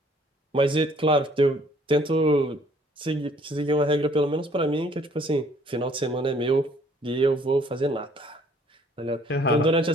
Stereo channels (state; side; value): normal; both; correlation 0.60